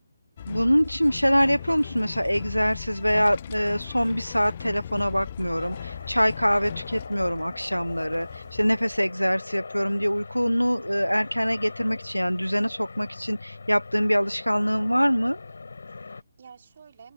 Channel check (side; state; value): both; inverted; correlation -0.99